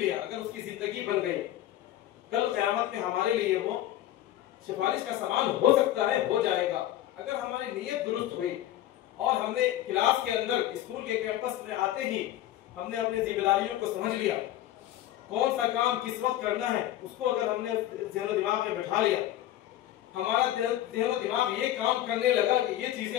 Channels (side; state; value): right; quieter; 13.4 dB